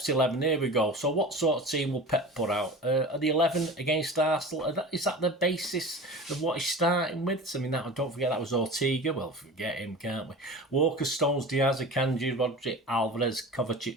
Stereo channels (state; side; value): normal; both; correlation 0.34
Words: 11, here we go. So what sort of team will Pep put out? Are the 11 against Arsenal, is that the basis of what he's starting with? I mean, don't forget that was Ortega. Well, forget him, can't we? Walker, Stones, Diaz, Akanji, Rodri, Alvarez,